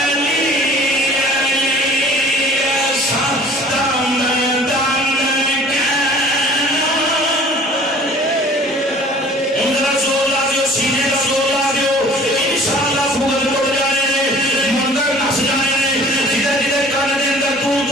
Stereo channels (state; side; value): normal; both; correlation 0.49